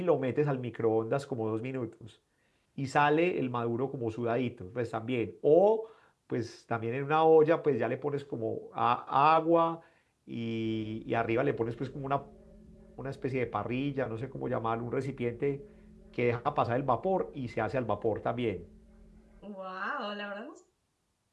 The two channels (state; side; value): identical; both; correlation 1.00